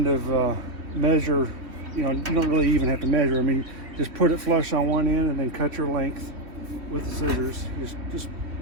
of measure. You don't really even have to measure. I mean, just put it flush on one end and then cut your length with the scissors. Just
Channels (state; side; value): late; left; 3.1 ms